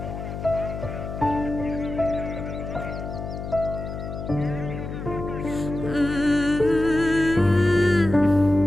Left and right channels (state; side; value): noise; left; hum, 7 dB below the sound